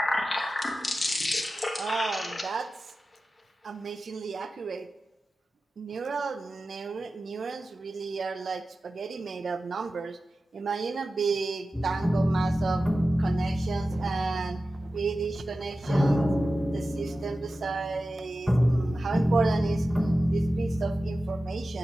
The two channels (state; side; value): normal; both; correlation 0.94